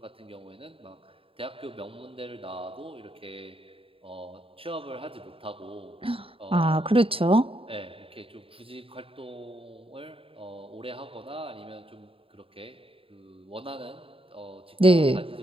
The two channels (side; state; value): left; late; 0.27 ms